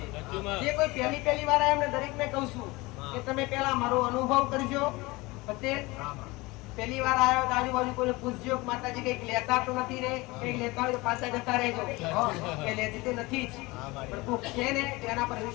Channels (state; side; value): quieter; right; 22.6 dB